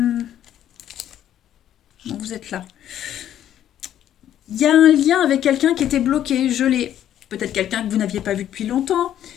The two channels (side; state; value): right; quieter; 11.1 dB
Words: vous êtes là. Il y a un lien avec quelqu'un qui était bloqué, gelé. Peut-être quelqu'un que vous n'aviez pas vu depuis longtemps.